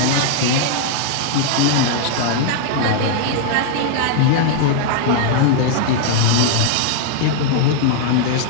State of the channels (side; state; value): both; different; correlation 0.00